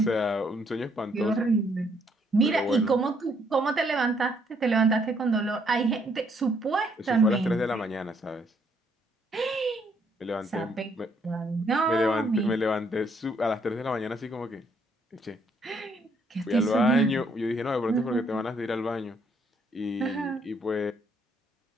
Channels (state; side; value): normal; both; correlation 0.70